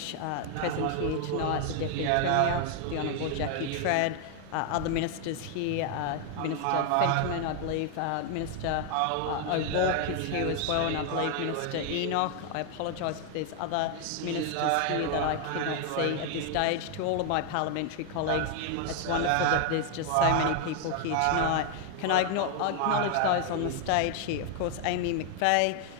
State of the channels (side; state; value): both; different; correlation 0.00